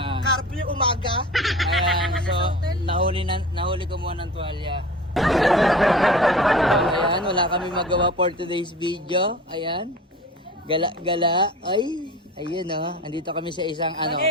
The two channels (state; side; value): normal; both; correlation 0.38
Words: Curfew umaga. Ayan, so nahuli ko muna ng tuwalya. Ayan, wala kami magawa for today's video. Ayan. Gala. Ay, ayun andito kami sa isang